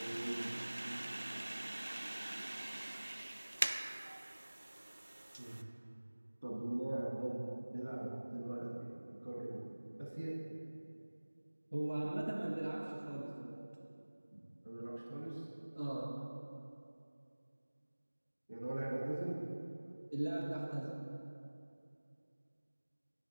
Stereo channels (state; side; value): inverted; both; correlation -1.00